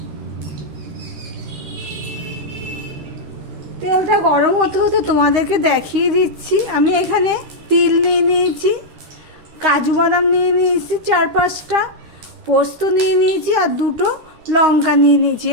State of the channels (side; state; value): left; late; 13 ms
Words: তেলটা গরম হতে হতে তোমাদেরকে দেখিয়ে দিচ্ছি। আমি এখানে তিল নিয়ে নিয়েছি, কাজু বাদাম নিয়ে নিয়েছি 4-5টা, পোস্ত নিয়ে নিয়েছি আর 2টো লঙ্কা নিয়ে নিয়েছি।